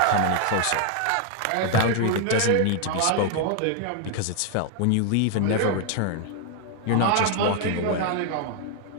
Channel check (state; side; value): different; both; correlation 0.00